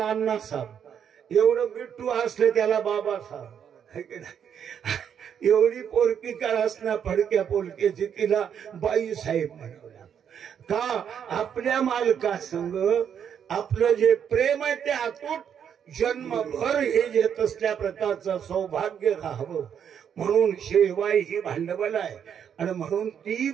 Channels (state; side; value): quieter; left; 8.3 dB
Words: अण्णा साहेब, एवढं बिट्टू असले त्याला बाबा साहेब, एवढी पोरकी का असणार फडक्या पोलकीची तिला बाई साहेब म्हणावं लागतं. का? आपल्या मालकासंग आपलं जे प्रेम आहे ते अतूट जन्मभर हे घेत असल्या प्रकारचं सौभाग्य राहावं म्हणून शेवाई ही भांडवल आहे. आणि म्हणून ती